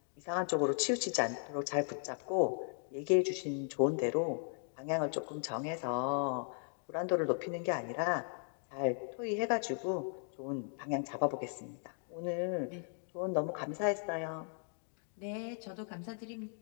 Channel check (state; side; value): silent; right; 53 dB below the other